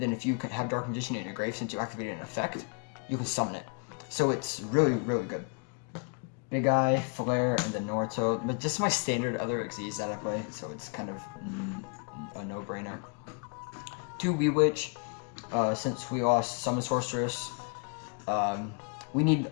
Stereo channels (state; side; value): quieter; right; 37.8 dB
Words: then if you can have Dark Magician in your grave, since you activated an effect, you can summon it. So it's really, really good. Big Eye, Flare, and then Naruto, but just my standard other Xyz that I play, so it's kind of no-brainer. 2 Wee Witch, since we lost Summon Sorceress. We need